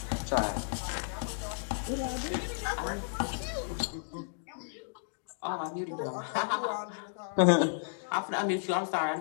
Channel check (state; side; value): silent; right; digital silence